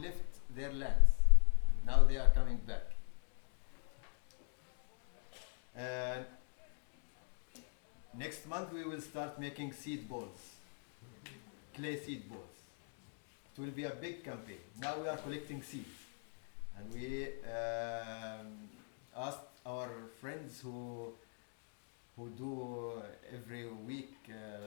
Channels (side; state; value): right; silent; 50 dB below the other